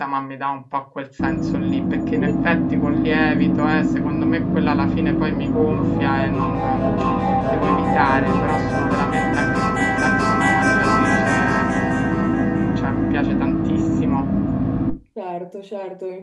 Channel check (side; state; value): both; identical; correlation 1.00